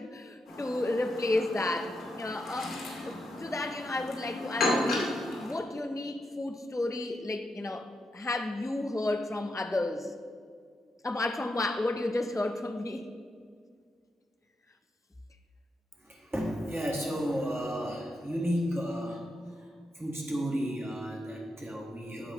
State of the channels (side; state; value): both; normal; correlation 0.84